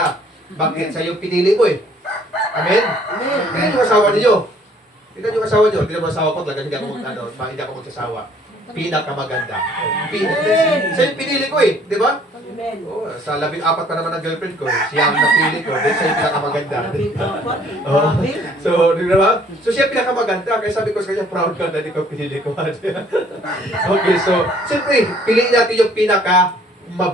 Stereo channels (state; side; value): normal; both; correlation 0.59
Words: Bakit? Sa yung pinili mo eh. Amen? Amen. Yung asawa niyo. Tignan yung asawa nyo. Tignan mo asawa ko. Talagang hindi ako magsasawa. Pinakamaganda. Sa yung pinili ko eh. Di ba? Oh, sa 14 pa naman ang girlfriend ko. Siya ang napili ko. Then siya yung pinakamaganda. Oh. So, di ba? So siya pinakamaganda. Kaya sabi ko sa kanya, proud ka na di ko pinili ko. Okay, so, siyempre, piliin natin yung